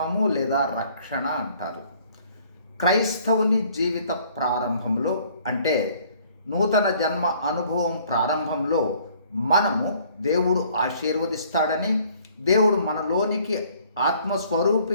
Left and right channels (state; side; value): inverted; both; correlation -0.59